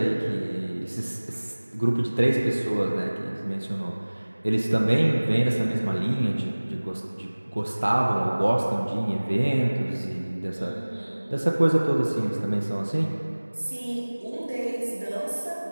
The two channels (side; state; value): both; inverted; correlation -1.00